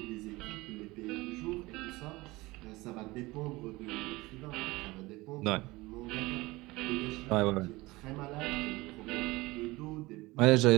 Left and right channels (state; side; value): quieter; left; 21.2 dB